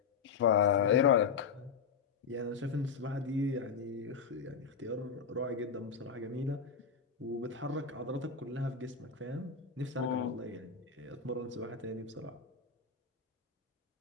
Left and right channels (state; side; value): quieter; right; 6.0 dB